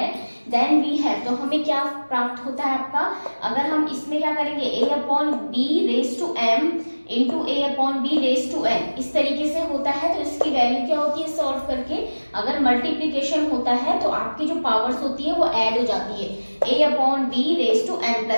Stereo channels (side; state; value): both; inverted; correlation -1.00